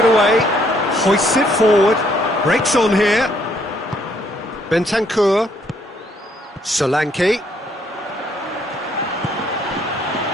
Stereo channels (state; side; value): normal; both; correlation 0.68